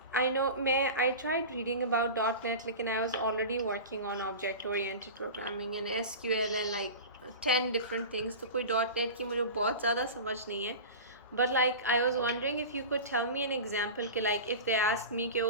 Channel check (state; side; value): inverted; both; correlation -0.31